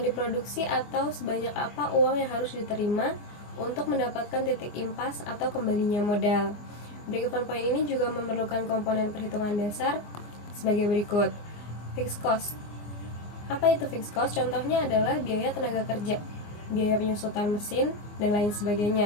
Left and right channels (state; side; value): late; right; 24 ms